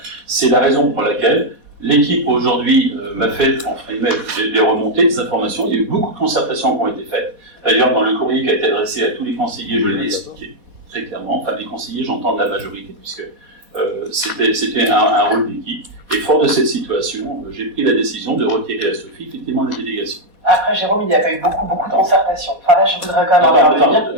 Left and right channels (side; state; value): left; late; 4.2 ms